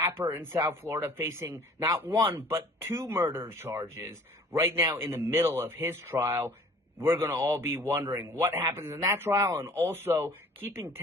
in South Florida, facing not 1, but 2 murder charges right now in the middle of his trial. We're going to all be wondering what happens in that trial, and also keeping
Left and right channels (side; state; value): both; normal; correlation 0.50